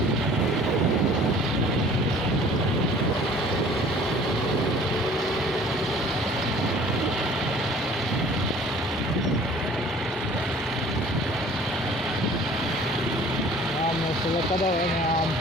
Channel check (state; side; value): normal; both; correlation 0.50